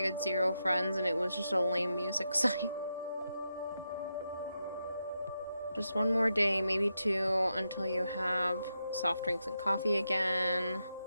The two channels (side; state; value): both; inverted; correlation -0.86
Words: had 0 friends, and it was just a lame music site. Just one more day, maybe 2, until you have soft drinks and coffee again.